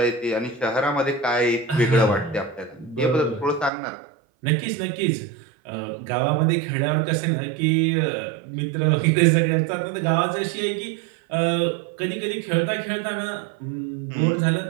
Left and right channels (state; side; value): drops out; left; at 3.7 s